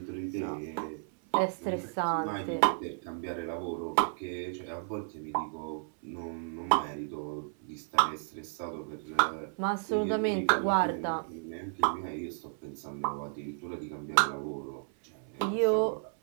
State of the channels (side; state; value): left; silent; 56 dB below the other